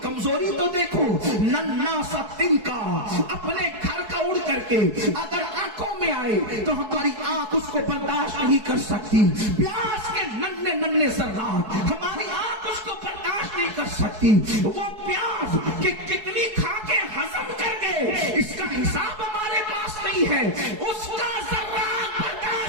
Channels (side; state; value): left; late; 4.7 ms